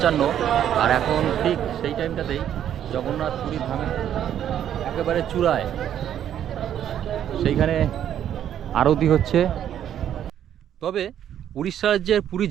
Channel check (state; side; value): quieter; left; 10.2 dB